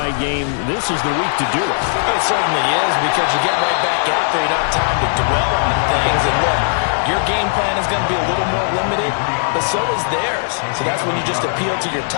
game, this is the week to do it. It certainly is, because you get right back after. You don't have time to dwell on things. And look, your game plan is going to be a little more limited, but so is theirs. So that's when you just appeal to your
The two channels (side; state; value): right; silent; digital silence